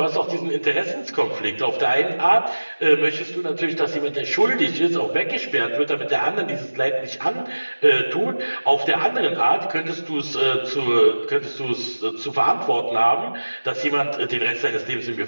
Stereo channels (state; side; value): inverted; both; correlation -1.00